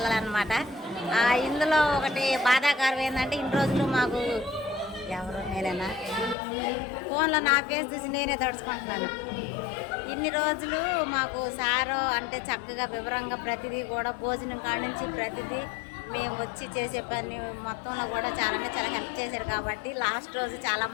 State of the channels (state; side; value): drops out; right; at 6.4 s